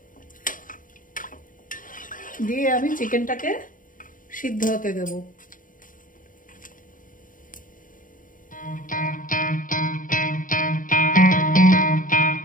দিয়ে আমি চিকেনটাকে সিদ্ধ হতে দেব।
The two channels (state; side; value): late; right; 0.39 ms